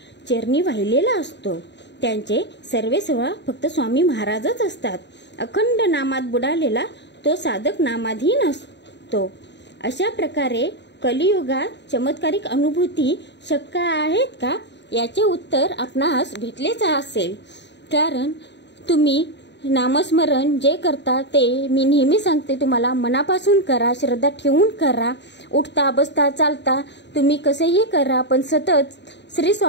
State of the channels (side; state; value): right; late; 0.51 ms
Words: चरणी वाहिलेला असतो. त्यांचे सर्वेसर्व फक्त स्वामी महाराजच असतात. अखंड नामात बुडालेला तो साधक नामाधीन असतो. अशा प्रकारे कलियुगात चमत्कारिक अनुभूती शक्य आहेत का याचे उत्तर आपणास भेटलेच असेल. कारण तुम्ही नामस्मरण जे करता ते मी नेहमी सांगते तुम्हाला मनापासून करा, श्रद्धा ठेवून करा. उठता बसता चालता तुम्ही कसेही करा, पण सतत श्री